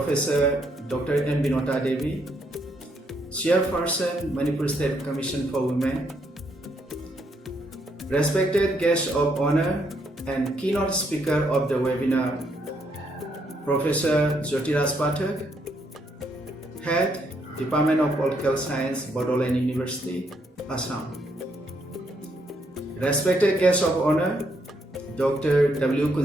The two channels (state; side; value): normal; both; correlation 0.74